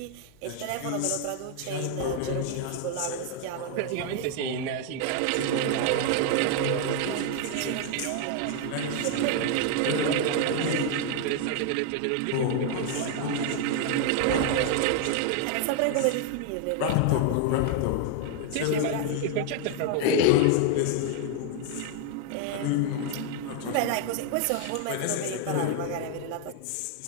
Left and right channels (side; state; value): both; different; correlation 0.00